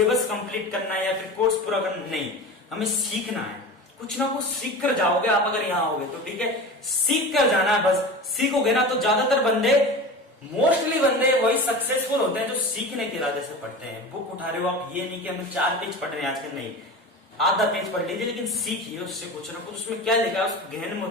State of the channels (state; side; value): normal; both; correlation 0.31